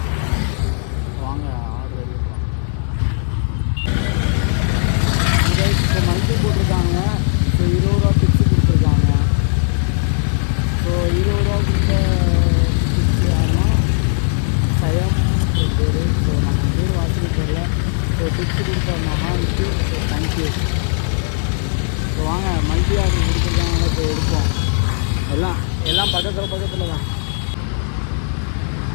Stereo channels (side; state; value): right; silent; 61 dB below the other